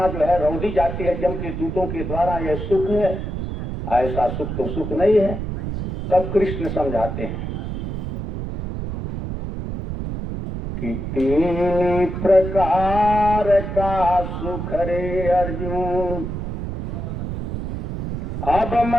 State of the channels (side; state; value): right; noise; rumble, 5 dB below the sound